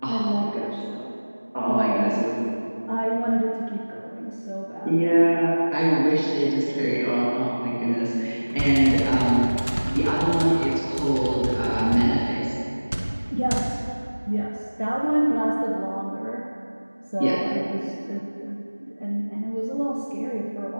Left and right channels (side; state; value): both; inverted; correlation -1.00